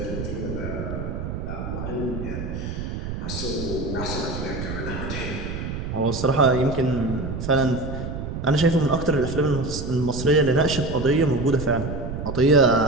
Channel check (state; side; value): noise; right; rumble, 5 dB below the sound